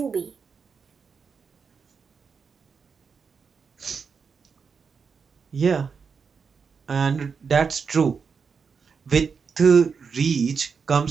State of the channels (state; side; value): quieter; left; 5.7 dB